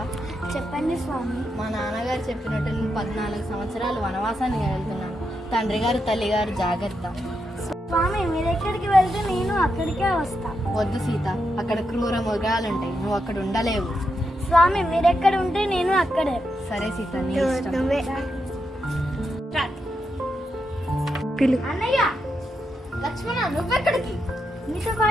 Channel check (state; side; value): normal; both; correlation 0.84